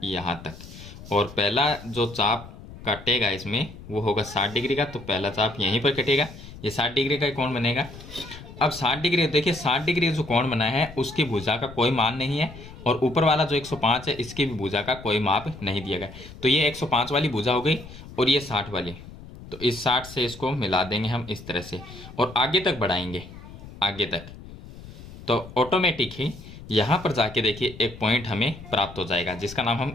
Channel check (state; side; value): noise; left; rumble, 16 dB below the sound